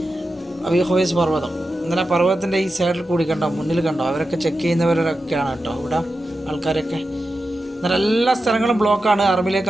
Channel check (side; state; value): both; normal; correlation 0.91